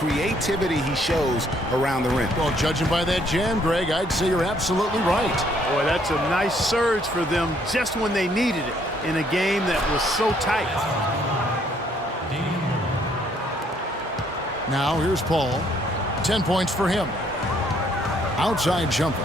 he shows around the rim. Well, judging by that jam, Greg, I'd say you're absolutely right. Boy, that's a nice surge for them just when they needed it in a game that was so tight. Now here's Paul. 10 points for him. Outside jumper.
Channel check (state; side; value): normal; both; correlation 0.67